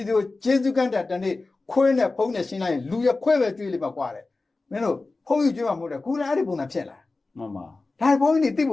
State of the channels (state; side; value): quieter; right; 3.5 dB